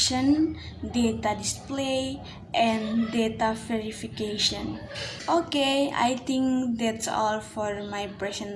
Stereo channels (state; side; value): identical; both; correlation 1.00